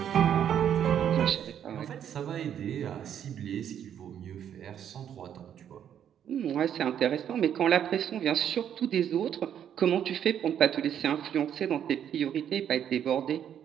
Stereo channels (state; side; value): quieter; left; 9.4 dB